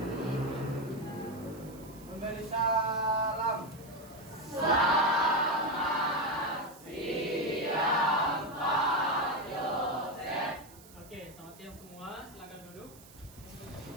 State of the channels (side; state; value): right; noise; hiss, 22 dB below the sound